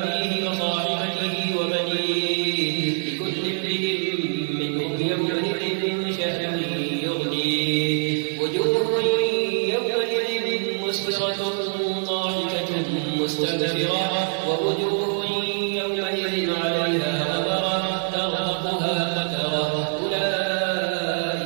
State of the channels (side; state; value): left; silent; digital silence